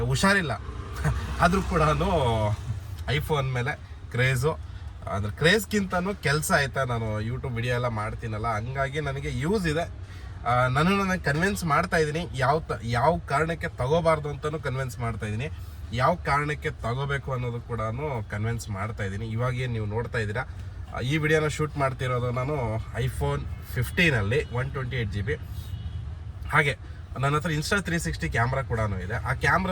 ಹುಷಾರಿಲ್ಲ ಆದರೂ ಕೂಡ ಐಫೋನ್ ಮೇಲೆ ಕ್ರೇಜು. ಅಂದರೆ ಕ್ರೇಜ್ಗಿಂತನೂ ಕೆಲಸ ಆಯಿತಾ, ನಾನು ಯೂಟ್ಯೂಬ್ ವಿಡಿಯೋ ಎಲ್ಲ ಮಾಡ್ತೀನಲ್ಲ, ಹಂಗಾಗಿ ನನಗೆ ಯೂಸ್ ಇದೆ. ನನಗೆ ಕನ್ವಿನ್ಸ್ ಮಾಡ್ತಾಯಿದ್ದೀನಿ ಯಾವ ಕಾರಣಕ್ಕೆ ತಗೋಬಾರ್ದು ಅಂತಲೂ ಕನ್ವಿನ್ಸ್ ಮಾಡ್ತಾಯಿದ್ದೀನಿ, ಯಾವ ಕಾರಣಕ್ಕೆ ತಗೋಬೇಕು ಅನ್ನೋದು ಕೂಡ ಕನ್ವಿನ್ಸ್ ಮಾಡ್ತಾಯಿದ್ದೀನಿ. ಇವಾಗೇನು ನೀವು ನೋಡ್ತಾ ಇದ್ದೀರಾ, ಈ ವಿಡಿಯೋನ ಶೂಟ್ ಮಾಡ್ತಿರೋದು ನಾನು ಐಫೋನ್ 15ಅಲ್ಲಿ 128 GB. ಹಾಗೆ ನನ್ನ ಹತ್ರ ಇನ್ಸ್ಟಾ 360 ಕ್ಯಾಮ್ರಾ ಕೂಡ ಇದೆ. ಆ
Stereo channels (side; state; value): both; identical; correlation 1.00